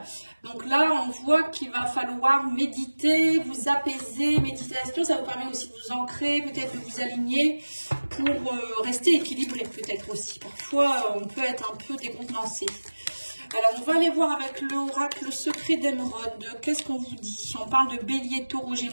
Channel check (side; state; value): both; inverted; correlation -1.00